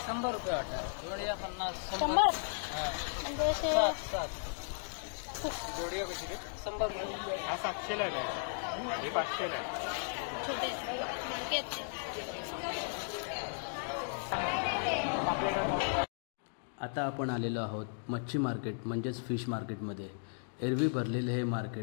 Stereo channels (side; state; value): right; silent; digital silence